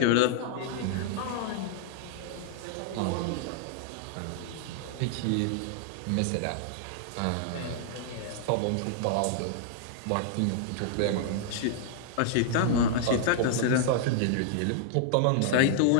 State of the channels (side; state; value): both; different; correlation -0.01